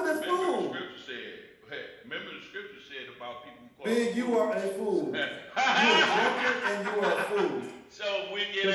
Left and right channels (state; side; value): identical; both; correlation 1.00